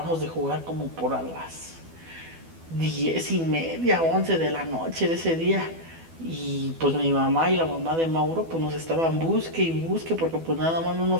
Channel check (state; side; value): late; left; 12 ms